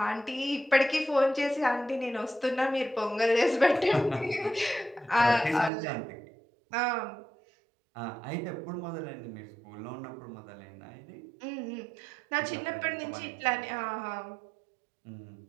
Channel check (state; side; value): drops out; left; at 5.7 s